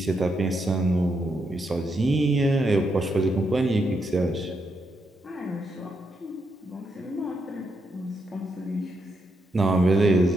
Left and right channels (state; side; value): normal; both; correlation 0.81